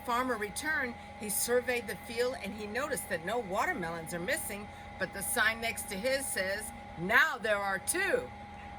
returned, he surveyed the field and he noticed that no watermelons are missing, but the sign next to his says, "Now there are two."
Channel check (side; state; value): both; identical; correlation 1.00